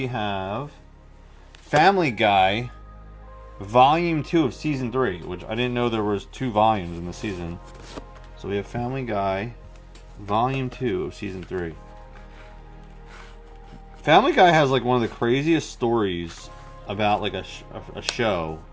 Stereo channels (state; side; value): identical; both; correlation 1.00